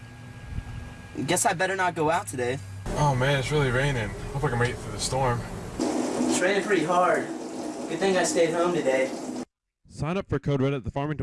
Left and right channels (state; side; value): identical; both; correlation 1.00